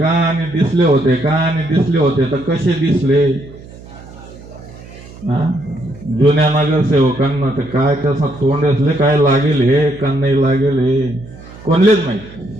आणि दिसले होते का, आणि दिसले होते तर कसे दिसले? जुन्या नगरसेवकांना तर काय कसं तोंड असले, काय लागेल हे का नाही लागेल हे कोणलेच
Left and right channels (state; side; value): noise; right; hum, 18 dB below the sound